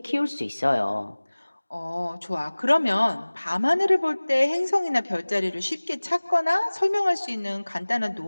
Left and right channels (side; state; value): both; inverted; correlation -1.00